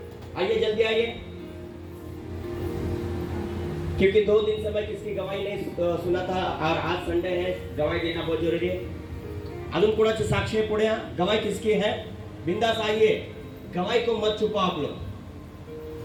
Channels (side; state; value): both; identical; correlation 1.00